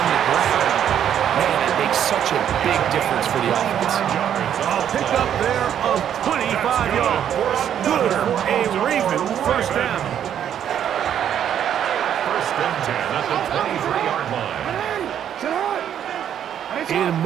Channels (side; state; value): left; quieter; 9.6 dB